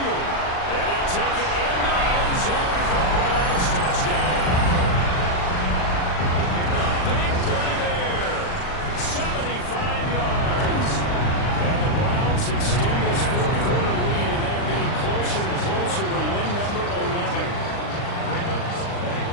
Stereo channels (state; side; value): late; right; 39 ms